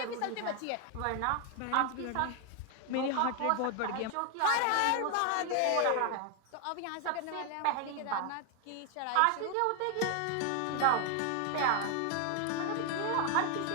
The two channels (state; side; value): different; both; correlation 0.01